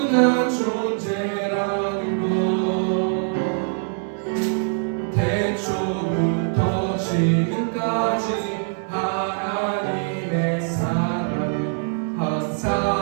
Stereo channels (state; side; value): silent; left; 62 dB below the other